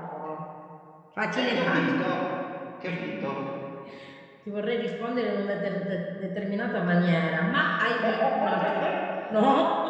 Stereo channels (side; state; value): both; identical; correlation 1.00